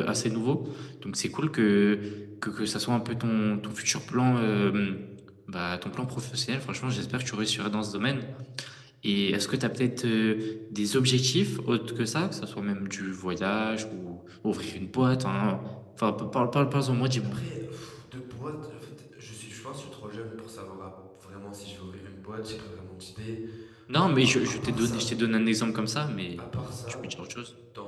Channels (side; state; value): both; identical; correlation 1.00